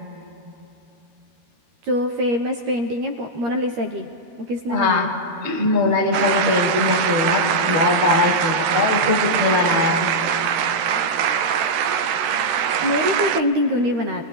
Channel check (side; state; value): left; late; 13 ms